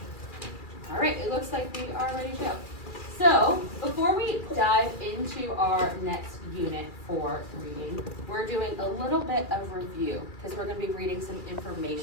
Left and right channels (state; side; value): late; right; 2.4 ms